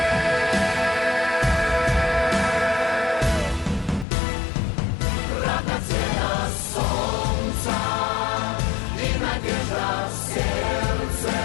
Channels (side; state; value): right; drops out; at 4.0 s